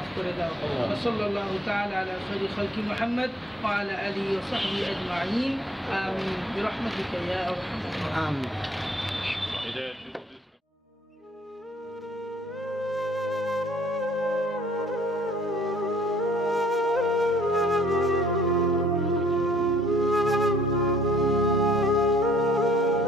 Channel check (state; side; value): normal; both; correlation 0.60